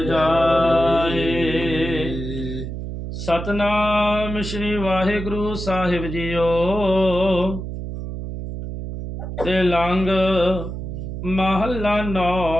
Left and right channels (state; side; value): noise; right; hum, 7 dB below the sound